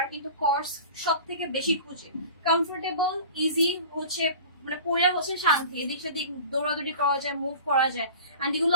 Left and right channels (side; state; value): both; inverted; correlation -0.38